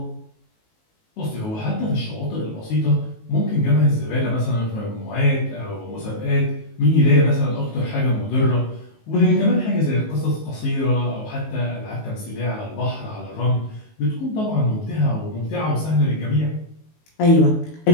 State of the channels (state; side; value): late; right; 19 ms